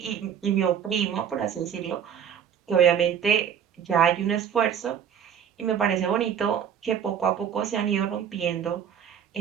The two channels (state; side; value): quieter; left; 8.4 dB